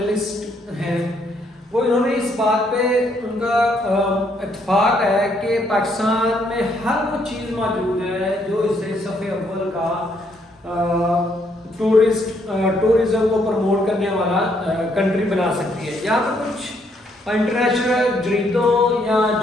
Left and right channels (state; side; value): normal; both; correlation 0.71